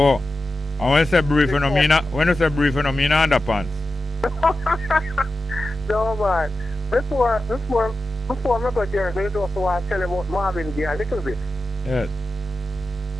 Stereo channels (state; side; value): normal; both; correlation 0.92